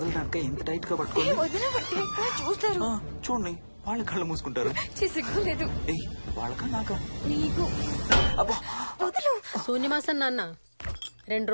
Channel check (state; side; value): inverted; both; correlation -1.00